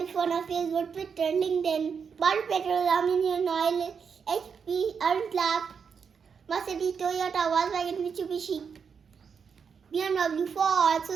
it on Facebook, Twitter, LinkedIn, Body Petrol, Aluminium Oil, HP, Untlab, Mercedes, Toyota, Volkswagen, Mitsubishi, BMW, Ford,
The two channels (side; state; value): left; quieter; 6.3 dB